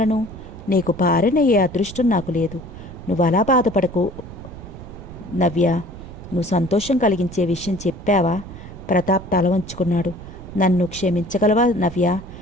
నీకు భార్యనయ్యే అదృష్టం నాకు లేదు. నువ్వు అలా బాధపడకు నవ్య. నువ్వు సంతోషం కలిగించే విషయం చెప్పావా? ప్రతాప్ తల వంచుకున్నాడు. నన్ను క్షమించగలవా నవ్య?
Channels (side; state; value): right; noise; rumble, 14 dB below the sound